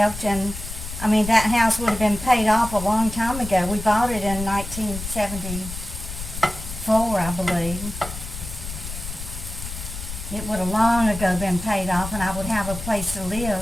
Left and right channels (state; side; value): noise; left; rumble, 9 dB below the sound